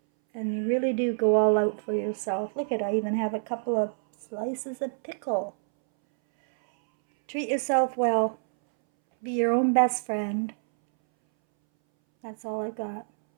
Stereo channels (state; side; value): silent; left; 60 dB below the other